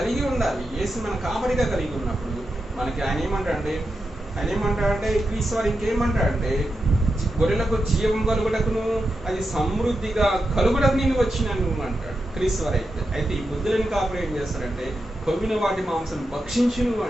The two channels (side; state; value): both; normal; correlation 0.88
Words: ఉండాలి. యేసు మన కాపరిగా కలిగి ఉన్నప్పుడు మనకి ఆయన ఏమంటాడంటే క్రీస్తు వారు ఇంకేమంటాడంటే గొర్రెలకు జీవం కలుగుటకును అది సమృద్ధిగా కలుగుటకు నేను వచ్చినాను అంటాడు క్రీస్తు వారు. అయితే ఈ బుద్ధులను కాపురం ఏం చేస్తారంటే కొవ్విన వాటి మాంసం భక్షించును